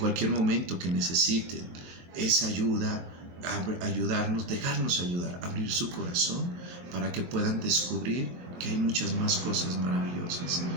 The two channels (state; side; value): late; left; 23 ms